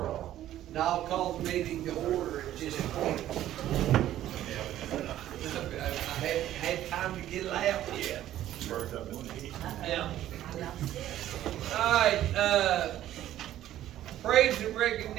all. Now I'll call the meeting to order at this point. I haven't had time to get it out yet. Yeah. All right, praise and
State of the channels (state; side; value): quieter; left; 12.8 dB